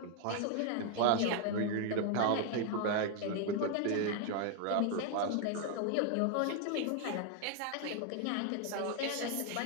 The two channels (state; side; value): different; both; correlation 0.01